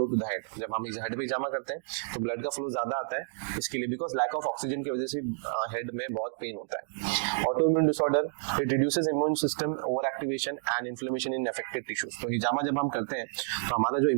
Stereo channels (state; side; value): silent; left; digital silence